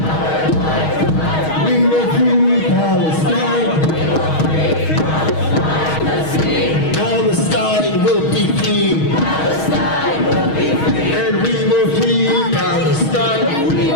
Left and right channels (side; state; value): right; late; 6.3 ms